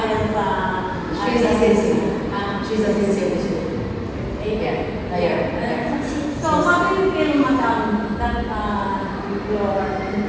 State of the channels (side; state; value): both; identical; correlation 1.00